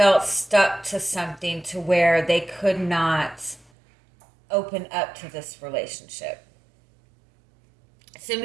stuck to something to where they could not open up to this relationship.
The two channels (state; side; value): drops out; left; at 3.7 s